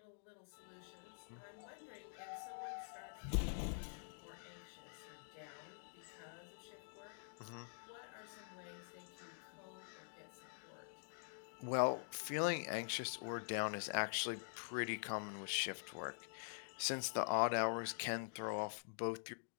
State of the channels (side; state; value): right; silent; digital silence